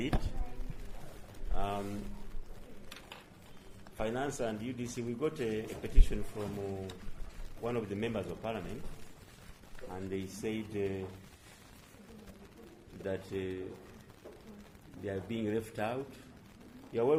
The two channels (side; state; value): both; identical; correlation 1.00